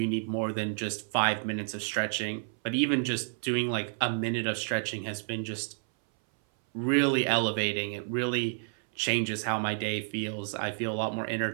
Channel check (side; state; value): left; silent; 58 dB below the other